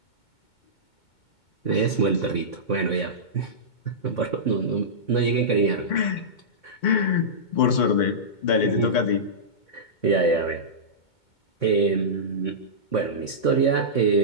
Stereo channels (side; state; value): right; late; 2.2 ms